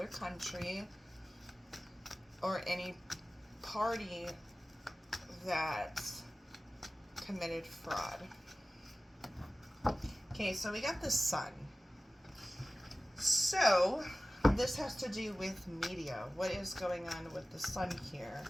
country or any party that committed fraud? Okay, so we got the sun. So this has to do with media. What is going on with the sun here?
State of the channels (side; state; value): both; normal; correlation 0.97